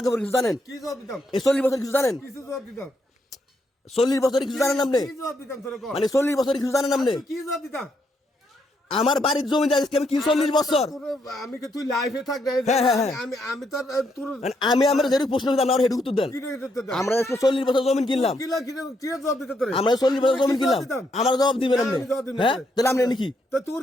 পরে কিছু জানেন কি জবাব দিতাম এই 40 বছর কিছু জানেন কিছু জবাব দিতাম 40 বছর কিছু জানেন আপনি কি জবাব দিতাম তোর কো মানে 40 বছর কিছু জানেন আপনি কি জবাব দিতাম আমার বাড়ির জমি যাইছে আমি কি 40 বছর তোর আমি কি তুই লাইফে থাক না আমি তোর তোর আমি আমার যেটুকু প্রশ্ন করতাম আমার হেডু উত্তর দেন কি দিতে আমরা 40 বছর জমি কিনলাম কি জবাব দিতে তোরে আমরা 40 বছর জমি কিনলাম আমার জবাব দিবেন আপনি হ্যাঁ তাহলে আপনি নাকি তো তোর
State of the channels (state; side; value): normal; both; correlation 0.76